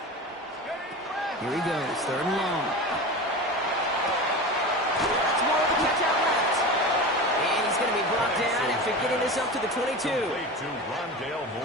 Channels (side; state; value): both; normal; correlation 0.29